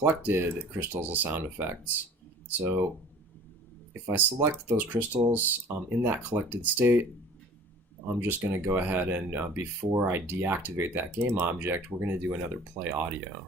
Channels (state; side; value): normal; both; correlation 0.46